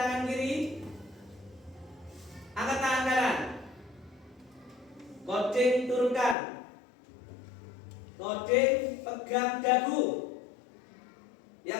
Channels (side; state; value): right; drops out; at 6.4 s